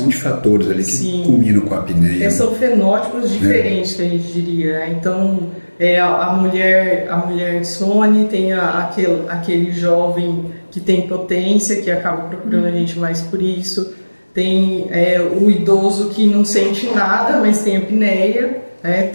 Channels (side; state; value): both; inverted; correlation -1.00